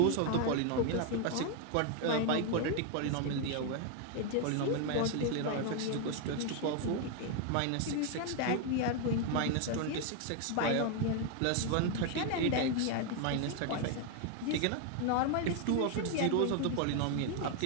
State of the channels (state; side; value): different; both; correlation 0.01